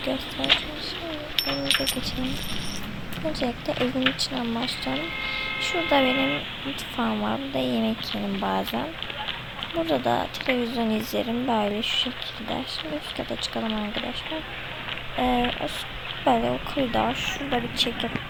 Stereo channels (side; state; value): both; identical; correlation 1.00